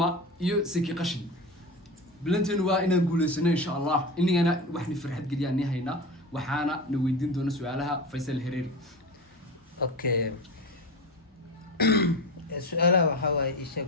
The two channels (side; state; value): both; normal; correlation 0.26